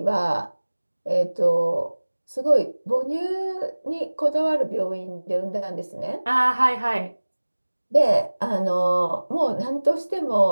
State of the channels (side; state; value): both; inverted; correlation -1.00